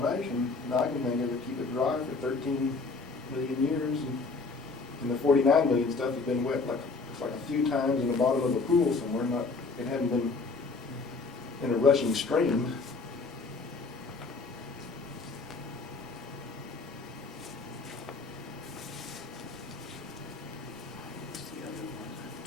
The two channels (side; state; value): right; quieter; 4.0 dB